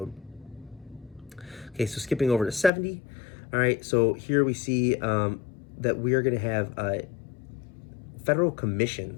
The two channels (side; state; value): right; drops out; at 2.7 s